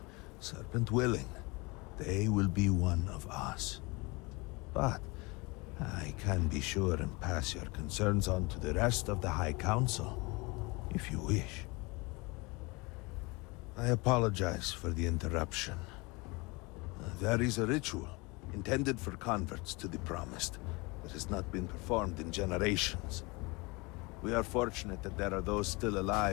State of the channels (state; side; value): quieter; right; 26.1 dB